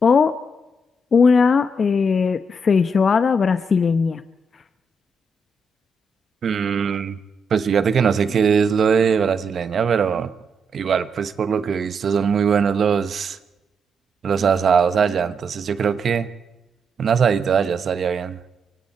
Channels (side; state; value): both; normal; correlation 0.79